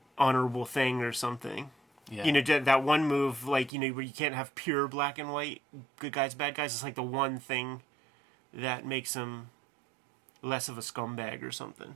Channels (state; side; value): drops out; left; at 3.7 s